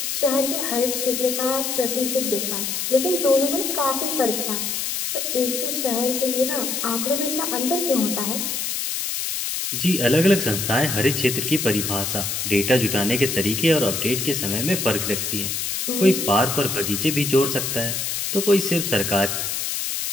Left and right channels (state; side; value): noise; left; hiss, 2 dB below the sound